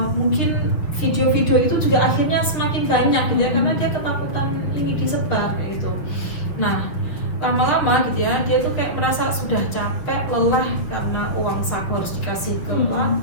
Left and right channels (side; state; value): right; late; 6.9 ms